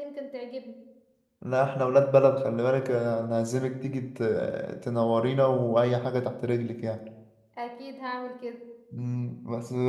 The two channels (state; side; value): identical; both; correlation 1.00